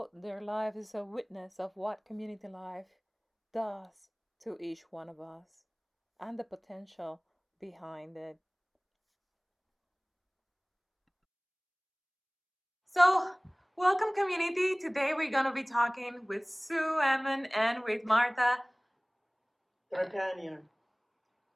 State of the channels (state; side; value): identical; both; correlation 1.00